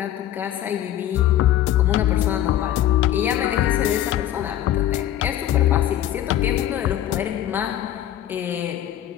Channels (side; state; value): right; quieter; 12.1 dB